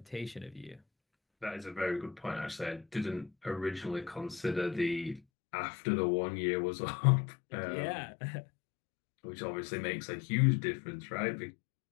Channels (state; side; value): drops out; right; at 5.2 s